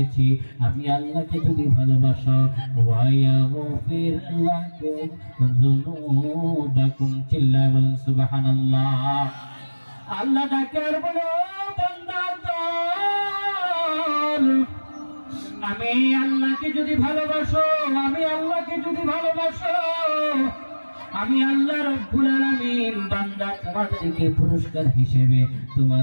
আমি আল্লাহকে যদি ভালোবাসো ওয়া ইয়াগফির লাকুম যুনুবাকুম, চিল্লায় বলেন সুবহানাল্লাহ। আল্লাহ তাকে আর বলে বান্দা আমি আল্লাহকে যদি ভালোবাসো, আমি আল্লাহকে যদি ভালোবাসো, আমি আল্লাহ রাব্বুল আলামিন বান্দা তোমাদেরকে পুরস্কার হিসেবে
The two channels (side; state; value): both; inverted; correlation -1.00